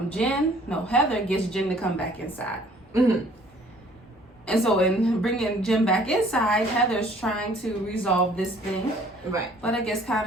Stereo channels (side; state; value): both; normal; correlation 0.56